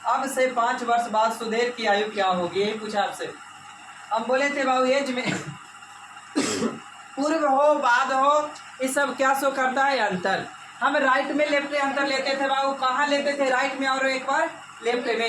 अब से 5 वर्ष बाद सुधीर की आयु क्या होगी, यही पूछा आपसे। हम बोले थे बाबू एज में पूर्व हो बाद हो, ये सब क्या शो करता है? अंतर। हम राइट में लेफ्ट में अंतर लेते थे बाबू, कहाँ लेते थे? राइट में और एक बार लेफ्ट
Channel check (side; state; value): both; identical; correlation 1.00